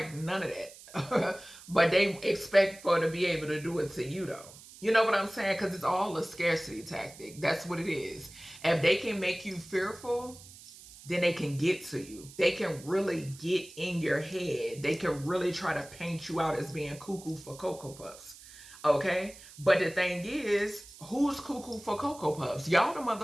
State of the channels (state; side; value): noise; right; hiss, 19 dB below the sound